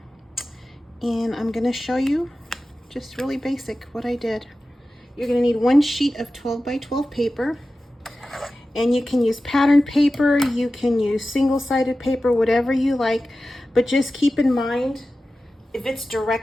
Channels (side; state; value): both; normal; correlation 0.94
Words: I'm going to show you just really basic what I did. You're going to need one sheet of 12 by 12 paper. And you can use pattern paper, you can use single-sided paper, whatever you like. But just keep in mind, if it's